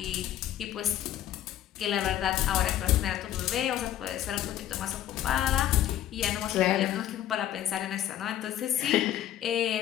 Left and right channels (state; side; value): quieter; right; 12.1 dB